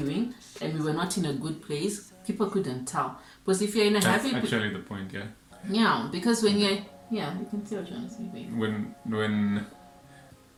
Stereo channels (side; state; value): both; identical; correlation 1.00